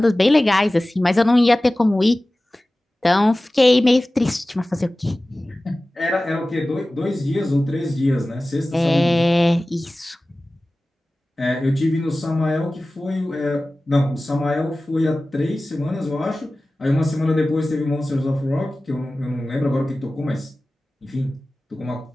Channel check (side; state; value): both; normal; correlation 0.97